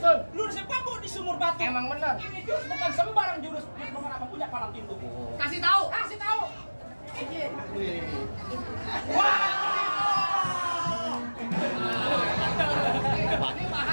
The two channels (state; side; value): inverted; both; correlation -1.00